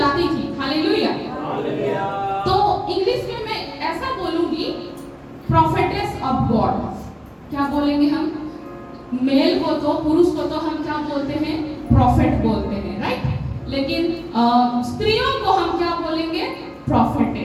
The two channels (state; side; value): identical; both; correlation 1.00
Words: थी। हालेलुया। तो इंग्लिश में मैं ऐसा बोलूंगी, प्रोफेटेस ऑफ गॉड। क्या बोलेंगे हम? मेल को तो, पुरुष को तो हम क्या बोलते हैं? प्रॉफिट बोलते हैं, राइट? लेकिन स्त्रियों को हम क्या बोलेंगे?